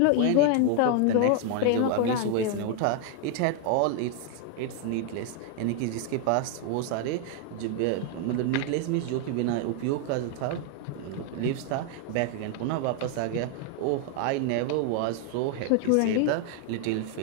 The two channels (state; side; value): different; both; correlation 0.00